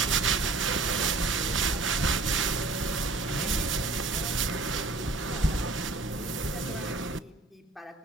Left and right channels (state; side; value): quieter; left; 3.6 dB